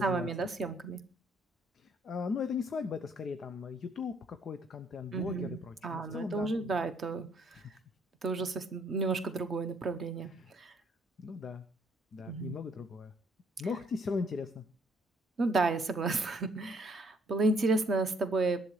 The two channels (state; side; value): normal; both; correlation 0.65